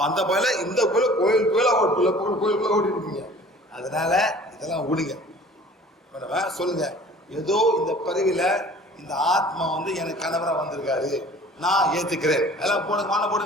அந்த பயில இந்த கோயிலுக்குள்ள ஓடிட்டு இருக்கீங்க. அதனால இதெல்லாம் விடுங்க. சொல்லுங்க, ஏதோ இந்த பிறவில இந்த ஆத்மா எனக்கு கணவரா வந்திருக்காரு, நான் ஏத்துக்கிறேன். எல்லாம் போடுங்க, வாழ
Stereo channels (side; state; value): both; normal; correlation 0.48